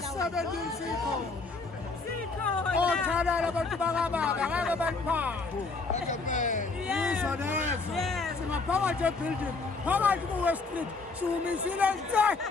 sikhona. Othalala abantu bakababa ngeke baniphathe. Yizo lezo. Singaphakathi ebuilding, phakathi ku-West Street, siwumisile nje.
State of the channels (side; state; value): right; quieter; 4.0 dB